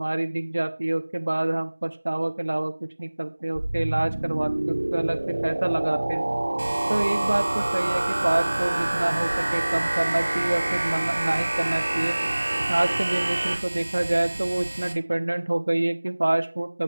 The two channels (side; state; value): both; inverted; correlation -1.00